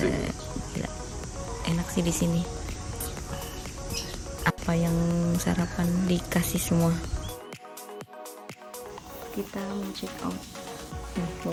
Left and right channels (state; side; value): identical; both; correlation 1.00